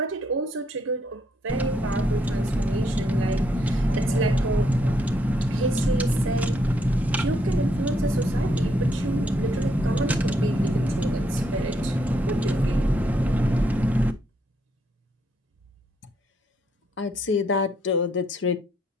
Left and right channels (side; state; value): both; normal; correlation 0.74